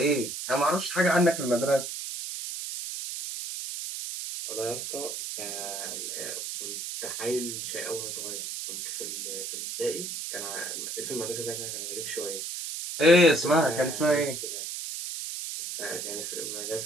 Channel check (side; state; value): right; noise; hiss, 5 dB below the sound